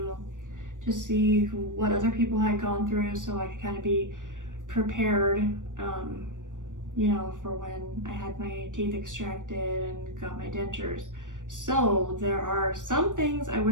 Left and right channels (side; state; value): left; late; 0.87 ms